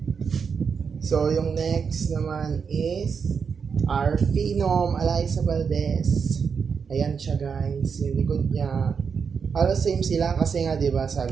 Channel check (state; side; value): quieter; left; 6.1 dB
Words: So, yung next naman is our Phenom Alyssa Valdez. Ayan siya guys, yung likod niya. Halos same sila kasi nga diba